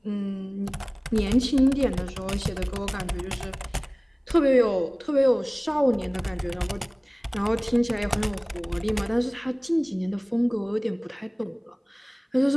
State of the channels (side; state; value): both; identical; correlation 1.00